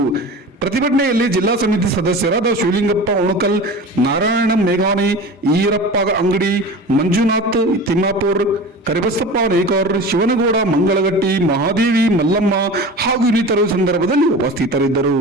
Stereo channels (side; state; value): both; normal; correlation 0.34